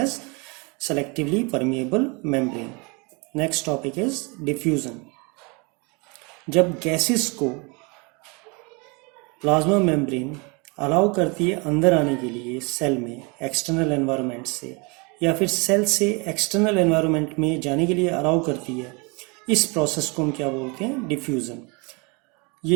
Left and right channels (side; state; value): left; quieter; 30.1 dB